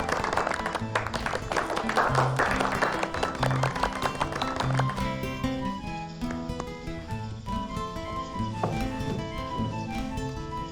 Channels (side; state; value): both; identical; correlation 1.00